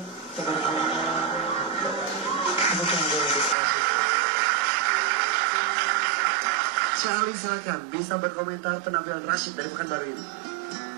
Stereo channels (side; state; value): left; drops out; at 3.6 s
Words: Tabarakallah. Syekh Ali silakan bisa berkomentar penampilan Rashid dari Pekanbaru ini.